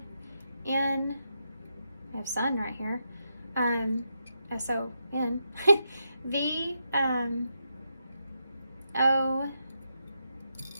We have sun right here. S-O-N. V, O,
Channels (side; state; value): both; inverted; correlation -0.84